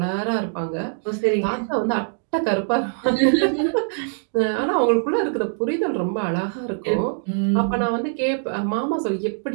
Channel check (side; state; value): left; silent; digital silence